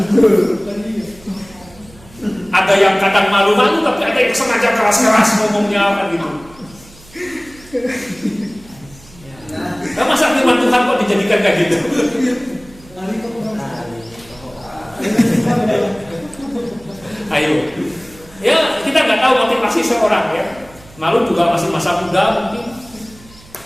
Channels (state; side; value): noise; right; hum, 24 dB below the sound